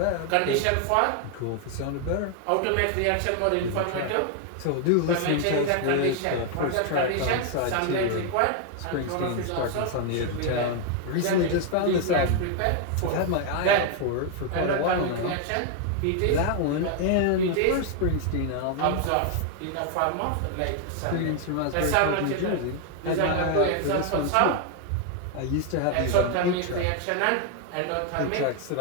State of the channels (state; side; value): different; both; correlation 0.01